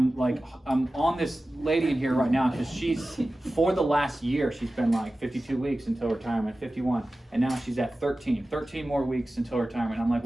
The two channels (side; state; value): both; normal; correlation 0.95